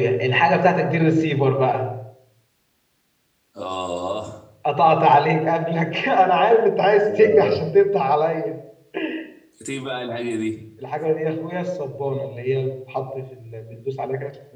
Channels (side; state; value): both; identical; correlation 1.00